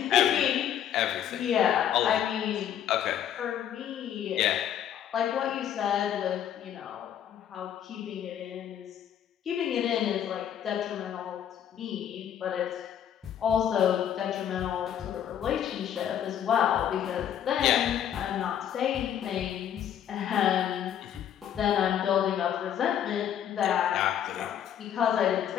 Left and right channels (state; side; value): quieter; right; 9.9 dB